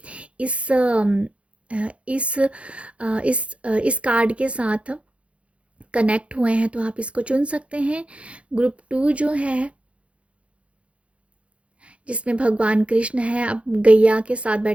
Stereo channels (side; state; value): left; late; 0.062 ms